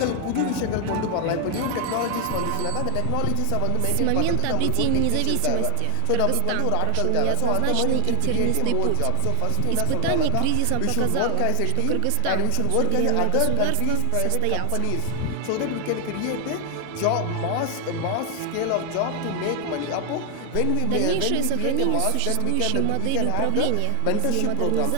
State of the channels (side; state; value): both; different; correlation 0.00